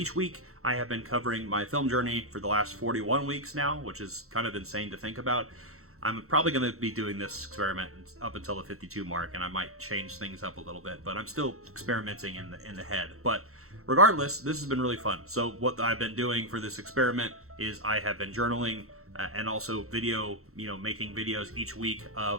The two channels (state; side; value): late; left; 0.63 ms